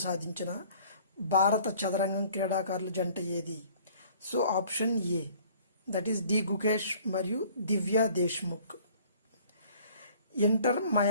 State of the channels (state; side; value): inverted; both; correlation -0.53